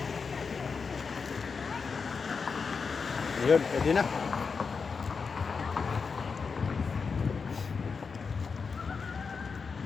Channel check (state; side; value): quieter; right; 5.2 dB